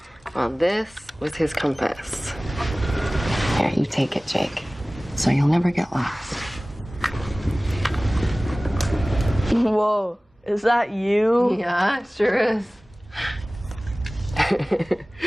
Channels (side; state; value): both; normal; correlation 0.98